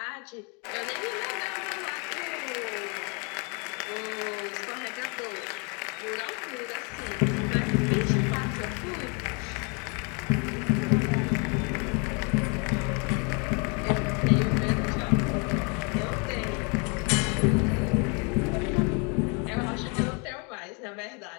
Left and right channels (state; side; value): quieter; right; 33.9 dB